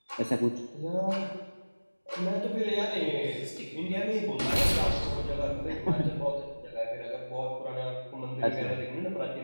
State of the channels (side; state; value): both; inverted; correlation -1.00